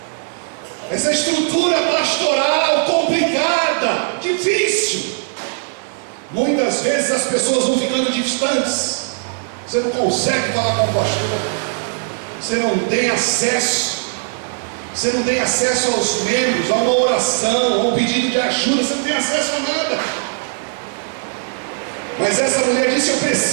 essa estrutura pastoral complicada, difícil, muitas vezes as pessoas vão ficando distantes. Você não consegue falar com o pastor, você não tem acesso, aos membros, a uma oração, a um pedido de ajuda, você não tem acesso a nada. Mas essa mulher disse: eu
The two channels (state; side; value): silent; left; digital silence